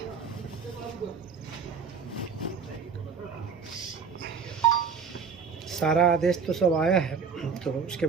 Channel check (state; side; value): quieter; left; 5.9 dB